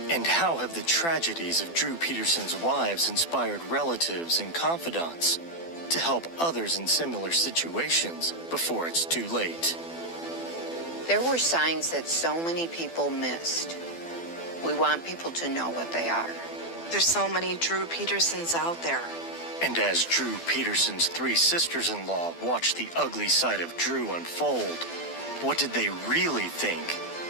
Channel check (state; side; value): late; right; 12 ms